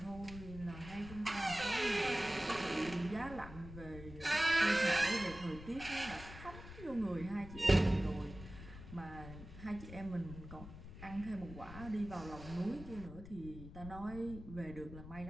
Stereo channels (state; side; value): noise; left; rumble, 13 dB below the sound